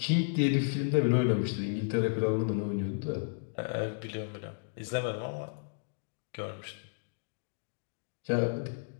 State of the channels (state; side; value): silent; right; digital silence